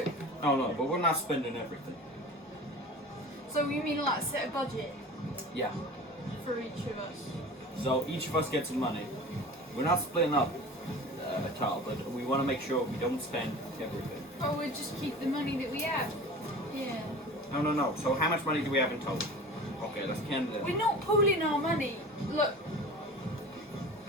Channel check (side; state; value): both; normal; correlation 0.37